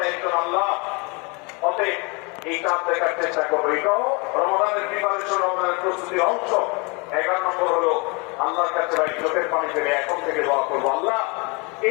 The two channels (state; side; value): quieter; right; 30.0 dB